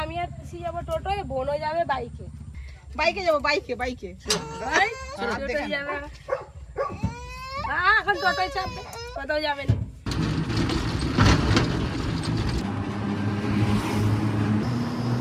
আমি আর পিসি যাবো টোটোয়, বোনও যাবে বাইকে। বাইকে যাবো, বাইকে বাইকে। ভাই টোটোয় যাবে। এখন টোটোয় চাপবে, কোথাও যাবে না।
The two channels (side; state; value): both; identical; correlation 1.00